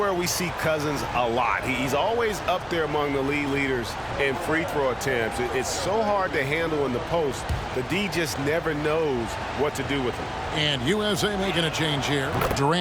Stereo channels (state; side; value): identical; both; correlation 1.00